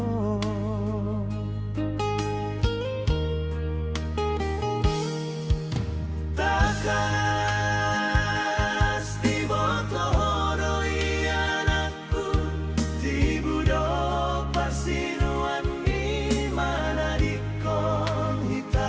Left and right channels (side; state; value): both; identical; correlation 1.00